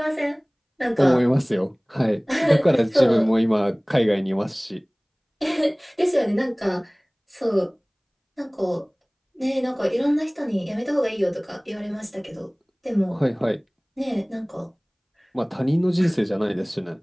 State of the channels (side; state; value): both; identical; correlation 1.00